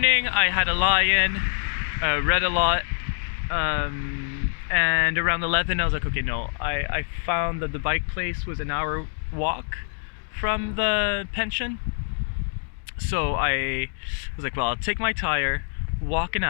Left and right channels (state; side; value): silent; right; digital silence